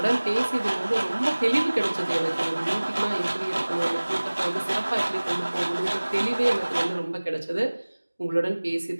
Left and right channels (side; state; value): both; inverted; correlation -1.00